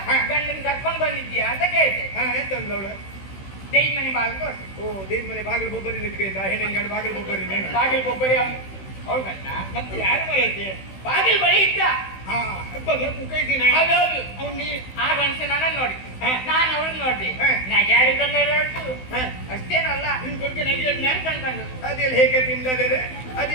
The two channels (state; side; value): late; right; 16 ms